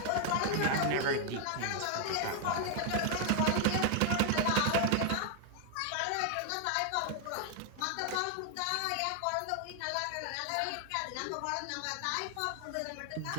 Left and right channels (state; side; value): different; both; correlation 0.00